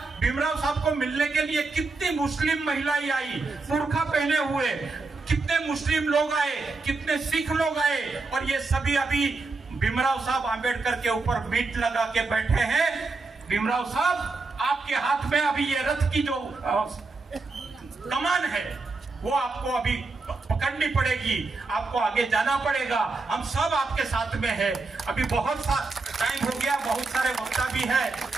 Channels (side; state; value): left; quieter; 3.8 dB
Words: भीमराव साहब को मिलने के लिए कितनी मुस्लिम महिलाएं आई, बुर्खा पहने हुए, कितने मुस्लिम लोग आए, कितने सिख लोग आए, और ये सभी अभी भीमराव साहब आंबेडकर के ऊपर बीट लगा के बैठे हैं। भीमराव साहब आपके हाथ में अभी ये रथ की जो कमान है वो आपको अभी पकड़नी पड़ेगी, आपको आगे जाना पड़ेगा। हम सब आपके साथ में है। अभी बहुत सा टाइम हो गया, बहुत सारे वक्ता भी है